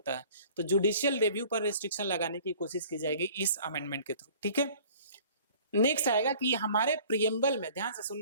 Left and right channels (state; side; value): inverted; both; correlation -0.50